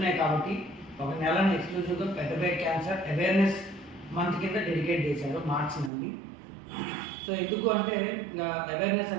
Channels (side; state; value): left; drops out; at 5.9 s